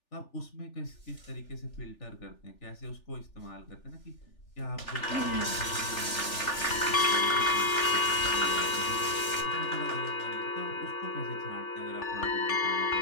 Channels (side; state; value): right; late; 3.4 ms